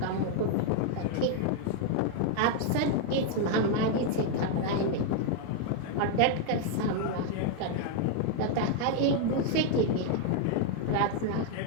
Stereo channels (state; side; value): different; both; correlation 0.00